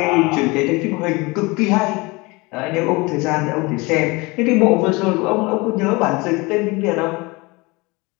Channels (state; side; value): quieter; right; 25.0 dB